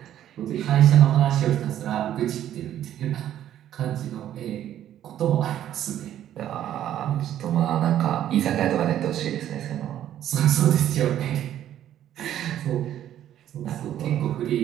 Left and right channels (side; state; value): left; quieter; 11.5 dB